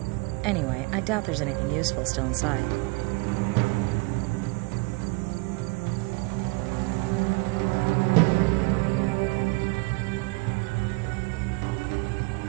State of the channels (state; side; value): quieter; left; 26.3 dB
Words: Anyway, I doubt there's anything useful still inside.